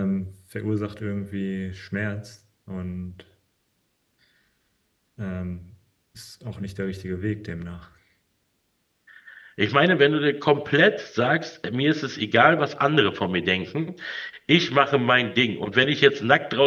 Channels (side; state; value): both; identical; correlation 1.00